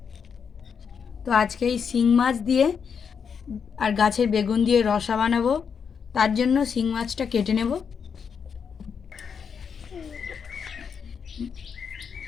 তো আজকে এই শিং মাছ দিয়ে আর গাছের বেগুন দিয়ে রসা বানাবো। তার জন্য শিং মাছটা কেটে নেব।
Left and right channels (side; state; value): right; quieter; 6.6 dB